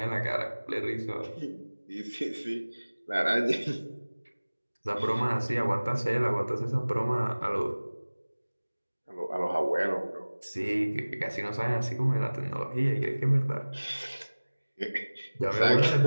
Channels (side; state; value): both; inverted; correlation -1.00